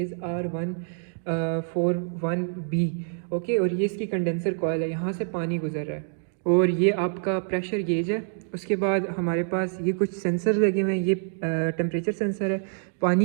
R141B। ओके, और ये इसकी कंडेंसर कॉइल है, यहाँ से पानी गुजर रहा है और ये आपका प्रेशर गेज है। उसके बाद हमारे पास ये कुछ सेंसर लगे हुए हैं, ये टेम्परेचर सेंसर है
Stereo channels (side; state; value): left; silent; digital silence